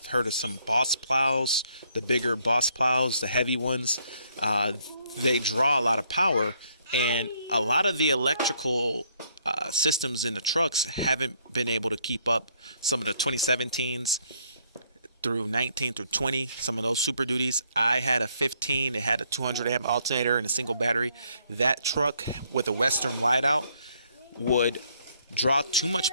heard of some Boss plows, the bigger Boss plows, the heavy ones, they draw a lot of power, and a lot of the electrical systems in the trucks haven't been able to keep up. Some of the 2017s through 19 through 20, some of those Super Duties. I had a 15, it had a 200 amp alternator and a single battery. That truck with a Western whiteout would draw too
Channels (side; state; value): both; inverted; correlation -0.67